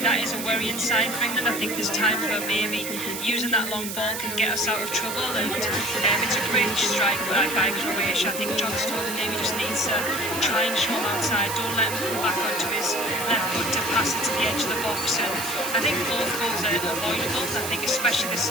that is a worrying sign for England. I think there's times where maybe using that long ball can get us out of trouble, and it's a great strike by Croatia. I think John Stones maybe just needs to try and show him outside. Don't let him come back onto his left foot to pass it to the edge of the box. And I think both goals are avoidable. I think especially the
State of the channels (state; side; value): noise; right; hiss, 6 dB below the sound